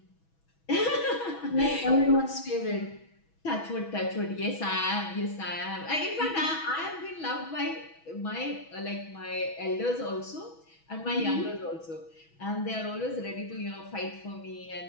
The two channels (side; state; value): right; late; 6.2 ms